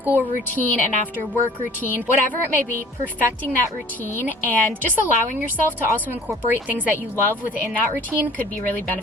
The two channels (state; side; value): normal; both; correlation 0.50